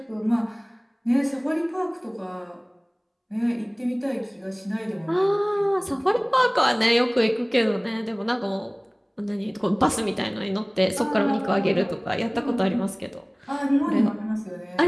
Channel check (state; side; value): identical; both; correlation 1.00